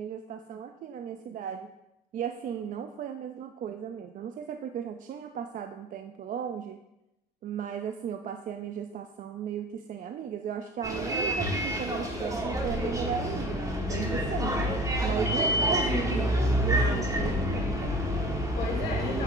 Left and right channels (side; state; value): both; normal; correlation 0.41